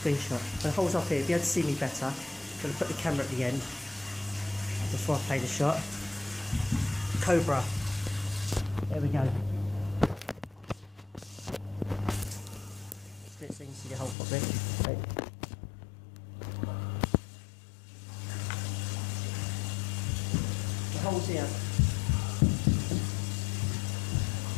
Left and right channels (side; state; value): right; drops out; at 14.2 s